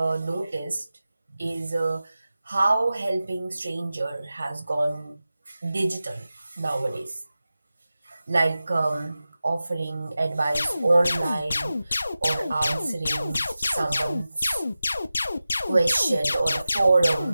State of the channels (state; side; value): inverted; both; correlation -0.94